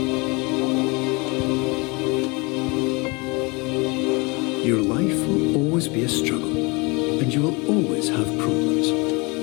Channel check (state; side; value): quieter; right; 27.9 dB